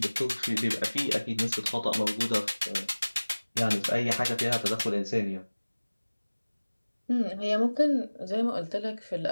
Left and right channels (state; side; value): inverted; both; correlation -1.00